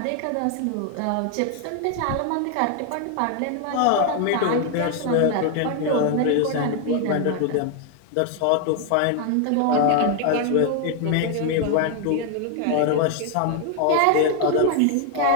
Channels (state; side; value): different; both; correlation 0.00